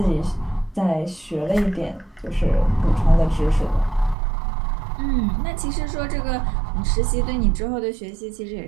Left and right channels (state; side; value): drops out; left; at 4.2 s